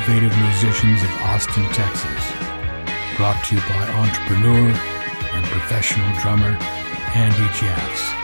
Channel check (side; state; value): both; inverted; correlation -1.00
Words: musicians of Austin, Texas. Brought to you by entrepreneur and professional drummer Andy Jeffs.